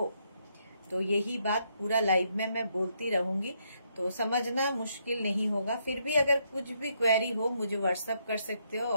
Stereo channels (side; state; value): both; inverted; correlation -0.75